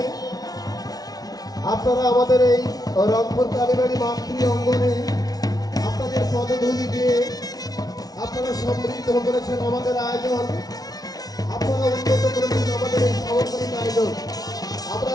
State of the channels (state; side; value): late; right; 0.18 ms